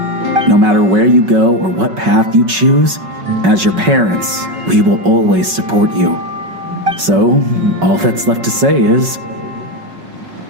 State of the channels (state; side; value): late; left; 5.4 ms